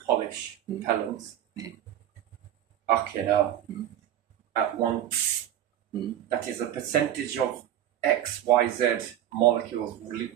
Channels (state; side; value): quieter; left; 11.3 dB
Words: repellents, fucking hell, at once, that is a percentage of XYZ molecules